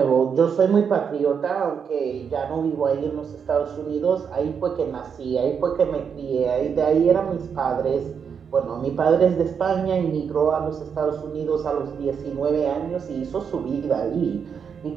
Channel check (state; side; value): quieter; left; 6.8 dB